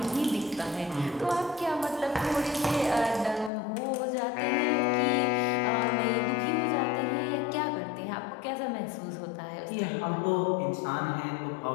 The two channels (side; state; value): right; drops out; at 3.5 s